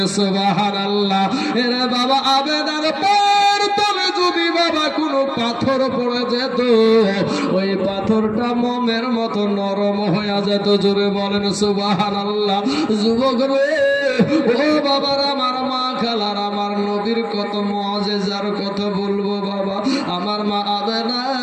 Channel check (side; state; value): both; identical; correlation 1.00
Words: সুবহানাল্লাহ। এরা বাবা আমেনার পায়ের তলে যদি বাবা কোনো পাথর পড়ে যেত, ওই পাথরটা মোমের মতো নরম হয়ে যেত। জোরে বলেন সুবহানাল্লাহ। যুবক রে, ও বাবার, আমার মা খালার, আমার নবীর কত মুআজিজার কথা বলবো বাবা। আমার মা আমেনা